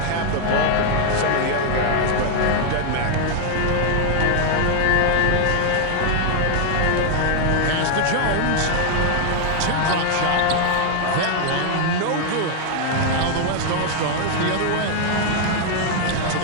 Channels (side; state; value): both; different; correlation 0.00